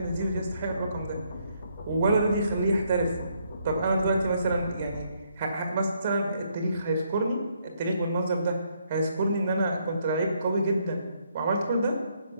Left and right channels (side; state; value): both; inverted; correlation -0.72